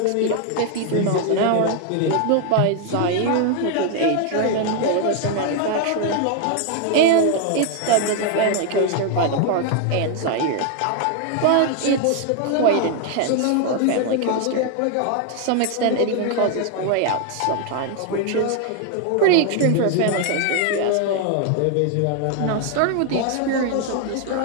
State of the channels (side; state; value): both; different; correlation 0.00